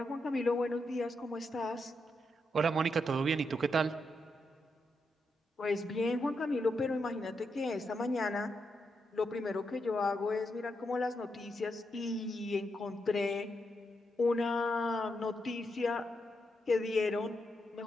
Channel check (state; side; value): normal; both; correlation 0.83